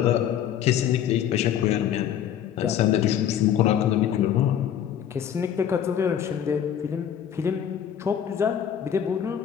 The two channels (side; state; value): right; quieter; 9.6 dB